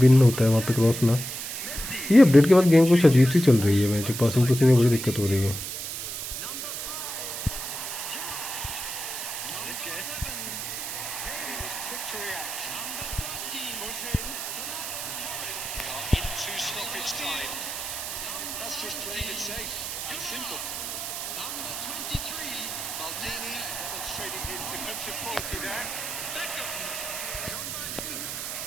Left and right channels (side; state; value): right; noise; hiss, 5 dB below the sound